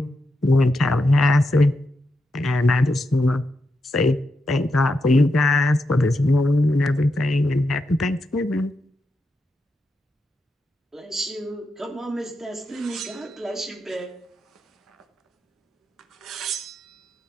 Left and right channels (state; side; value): normal; both; correlation 0.85